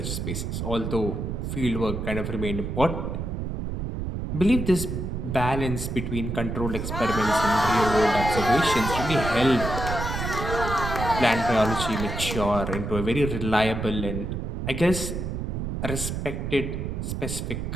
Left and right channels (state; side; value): noise; right; rumble, 4 dB below the sound